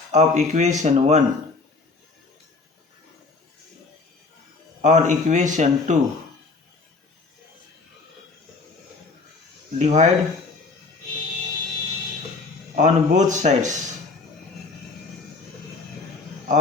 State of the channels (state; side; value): quieter; right; 3.9 dB